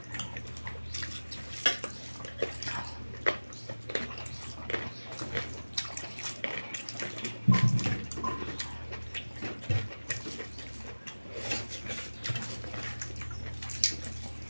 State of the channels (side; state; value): both; inverted; correlation -1.00